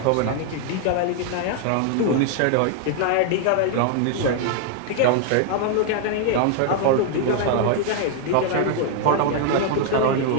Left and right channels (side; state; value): both; different; correlation 0.00